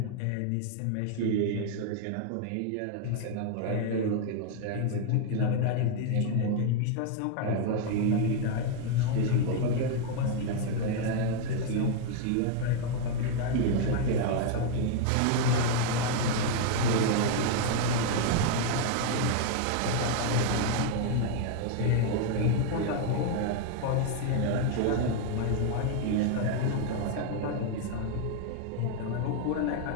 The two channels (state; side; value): different; both; correlation 0.00